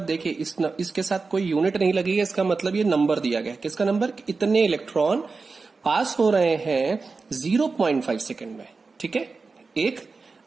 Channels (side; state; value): left; quieter; 4.3 dB